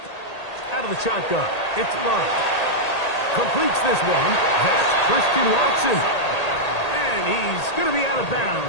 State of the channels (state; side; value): late; right; 1.8 ms